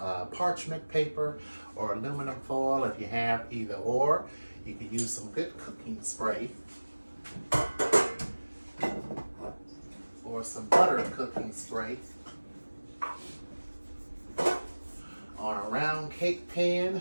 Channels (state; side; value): inverted; both; correlation -1.00